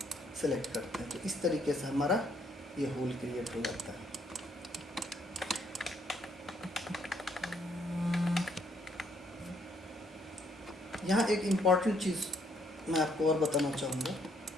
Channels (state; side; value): normal; both; correlation 0.69